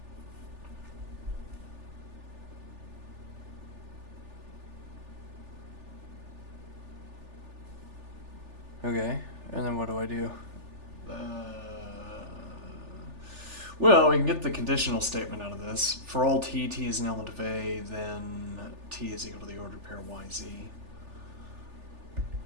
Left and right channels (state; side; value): late; left; 3.4 ms